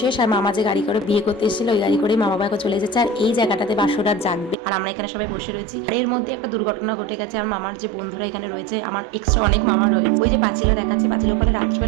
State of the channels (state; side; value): drops out; left; at 4.5 s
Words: শেষ। আর মামা যে গাড়ি করে বিয়ে করতে এসেছিল ওই গাড়ি করে মা বাবা এখন চলে যাচ্ছে। আর এই জায়গাটাতে বাসর রাত জাগবে আর আমরা এখানে সবাই বসে রয়েছি। আর এর মধ্যে একটা দুর্ঘটনা ঘটে গেছে। আর মামার যে বন্ধুরা এখানে রয়েছে, আমার এক্সট্রা অনেক মামা রয়েছে, ওই যে পাঁচিলে দেখাচ্ছে, পাঁচিল ওখানে